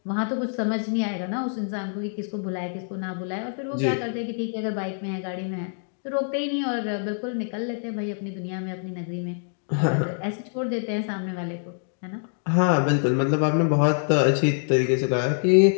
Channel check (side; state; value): right; silent; digital silence